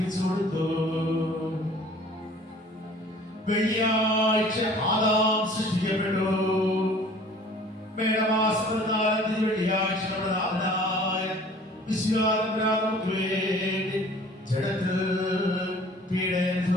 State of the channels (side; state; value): both; normal; correlation 0.50